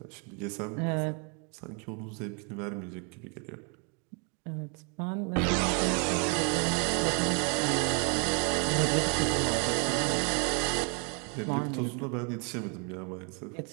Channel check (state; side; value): quieter; left; 38.0 dB